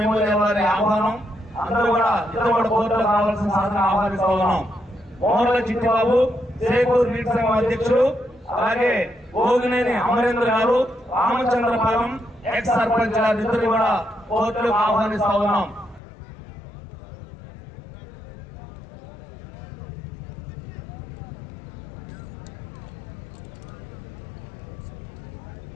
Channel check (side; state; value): right; drops out; at 16.0 s